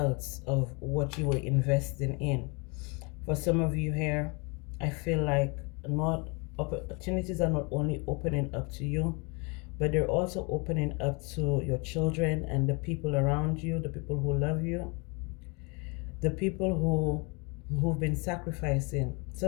of what you were investing in. For some of you here, I feel like not opportunities are not only opening up to you, but they're also opening up to your children and the people around you, the people who love you, the people who've been sacrificing.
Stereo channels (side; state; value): right; quieter; 31.1 dB